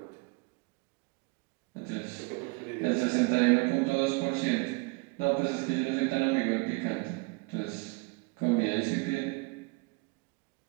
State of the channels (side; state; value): left; quieter; 27.8 dB